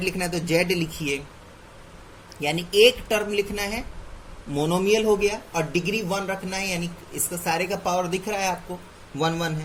लिखना है तो z लिखिए, यानी एक टर्म लिखना है मोनोमियल हो गया, और डिग्री 1 रखना है, यानी इसका सारे का पावर दिख रहा है आपको 1 1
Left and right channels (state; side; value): identical; both; correlation 1.00